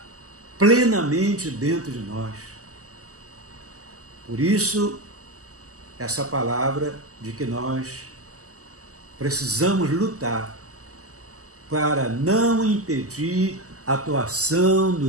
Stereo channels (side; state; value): left; late; 0.66 ms